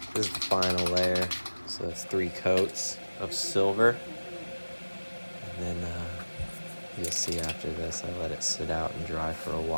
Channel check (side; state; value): both; inverted; correlation -1.00